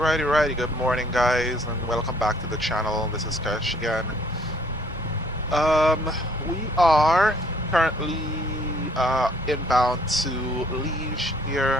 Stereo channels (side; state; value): both; normal; correlation 0.61